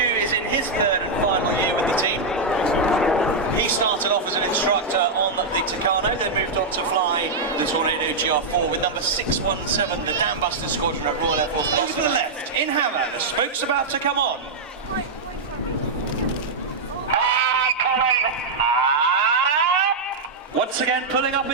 is in his third and final year with the team. He started off as an instructor on the Tucano, then moved on to fly the Tornado GR4 with number 617, the Dam Buster Squadron at Royal Air Force. Over to the left, in Hammer, the spoke's about to come on. Once again, pulling up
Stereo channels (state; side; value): quieter; left; 3.6 dB